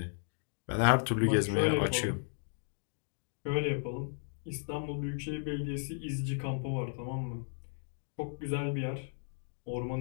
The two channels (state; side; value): silent; right; digital silence